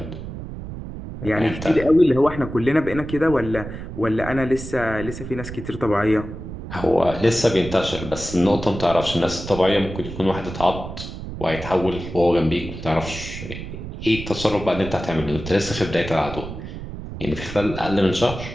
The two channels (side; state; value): right; noise; rumble, 9 dB below the sound